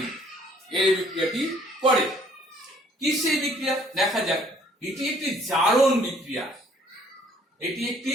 এই বিক্রিয়াটি করে। কি সেই বিক্রিয়া দেখা যাক। এটি একটি জারণ বিক্রিয়া, এটি একটি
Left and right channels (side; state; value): both; normal; correlation 0.60